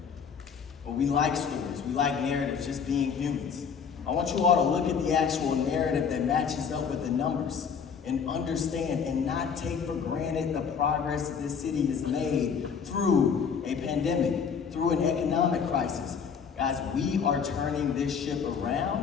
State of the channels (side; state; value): right; quieter; 6.6 dB